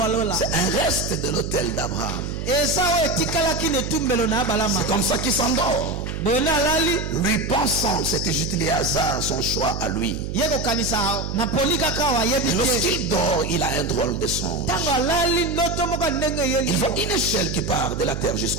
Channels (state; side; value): noise; right; hum, 5 dB below the sound